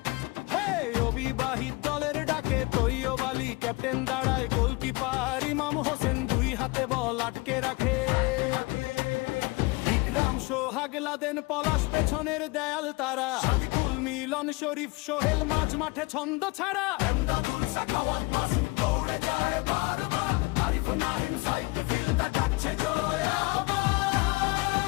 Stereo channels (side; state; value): right; quieter; 25.3 dB